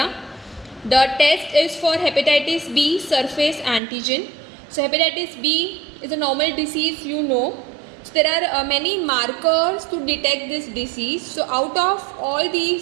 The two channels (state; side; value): drops out; left; at 3.8 s